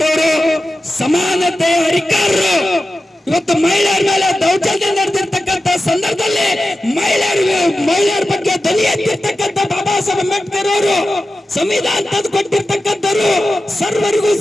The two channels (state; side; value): normal; both; correlation 0.93